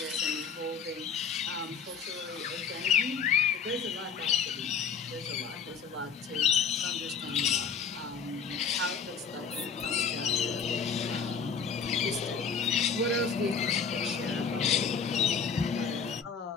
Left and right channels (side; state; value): right; quieter; 6.1 dB